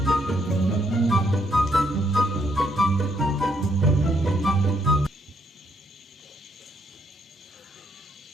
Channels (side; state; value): both; normal; correlation 0.73